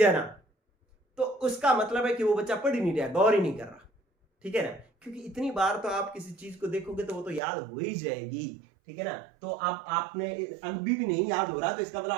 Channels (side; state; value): left; drops out; at 7.4 s